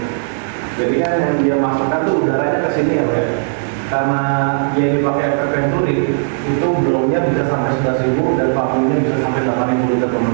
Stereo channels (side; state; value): left; silent; 60 dB below the other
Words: Jadi kan yang dia masukkan tuh udaranya ke sini ya Pak. Karena dia dipakai efek Venturi, itu blownya bisa sampai 11.000 dan vakumnya bisa sampai 8.000 liter per